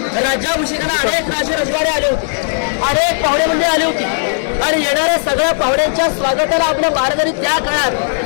राज्याभिषेकाला अनेक राजे रजवाडे आले होते, अनेक पाहुणे मंडळी आली होती आणि येणाऱ्या सगळ्या पाहुण्यांच्या स्वागताला आपल्या महाराजांनी त्या काळात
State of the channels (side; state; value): right; silent; digital silence